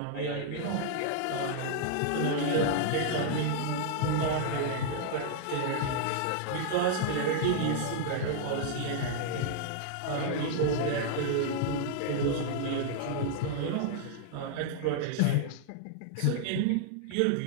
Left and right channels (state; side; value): different; both; correlation -0.01